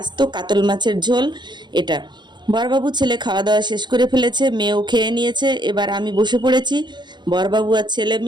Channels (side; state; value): left; late; 0.21 ms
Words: আস্ত কাতল মাছের ঝোল। এটা বরবাবু ছেলে খাওয়া দাওয়া শেষ করে ফেলেছে, মেয়েও খেয়ে নিয়েছে, এবার আমি বসে পড়েছি। বরবাবু আর ছেলে